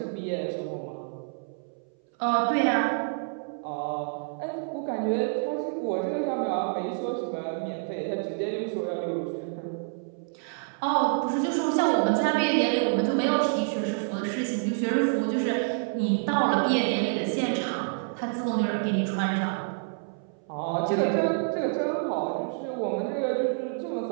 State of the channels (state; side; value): silent; left; 59 dB below the other